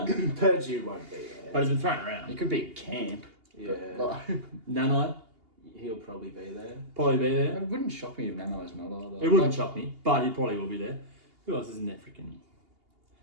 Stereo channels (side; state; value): left; late; 2.8 ms